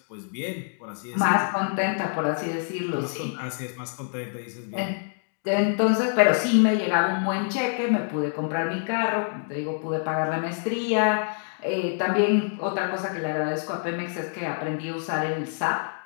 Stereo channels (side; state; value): right; silent; digital silence